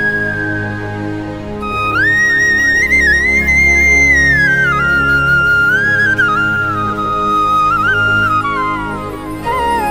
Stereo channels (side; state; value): both; identical; correlation 1.00